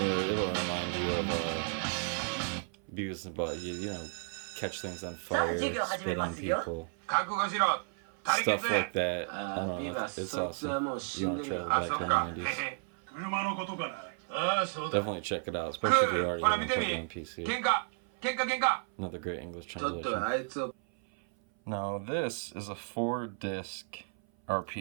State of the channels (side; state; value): left; silent; 56 dB below the other